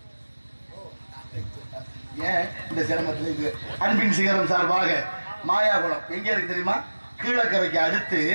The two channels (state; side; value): inverted; both; correlation -1.00